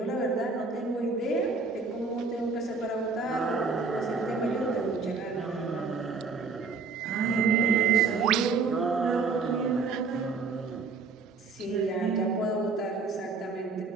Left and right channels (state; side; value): quieter; left; 4.5 dB